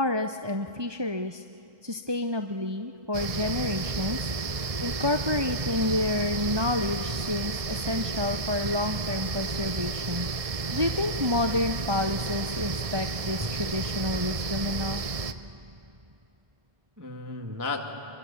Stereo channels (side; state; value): left; late; 1.6 ms